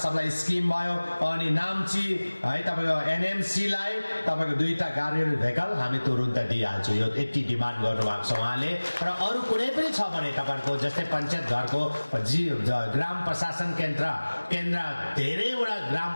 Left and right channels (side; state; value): both; inverted; correlation -1.00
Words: scheme भयो। अनि नाम्ची है तपाईको एनएमसी लाई तपाईको 2टा गाडी भेकल हामी तुरुन्त दिइहाल्छु, यो यति डिमान्ड गर्नु भएको छ उहाँले। र अरु कुनै पनि छ भने तपाईको जस्तै पञ्चायत घरको ग्राम प्रशासन केन्द्र धेरैवटा ग्राम